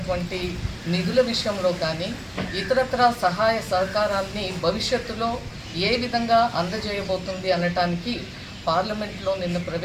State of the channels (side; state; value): both; identical; correlation 1.00